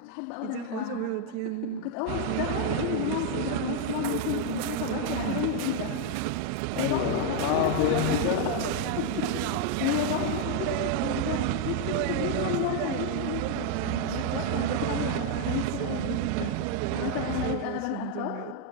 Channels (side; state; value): both; different; correlation 0.00